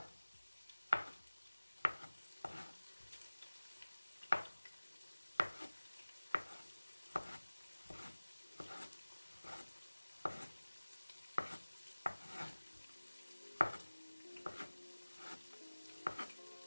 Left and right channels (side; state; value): both; inverted; correlation -1.00